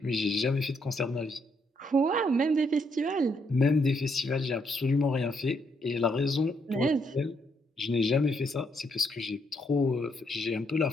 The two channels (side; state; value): both; normal; correlation 0.75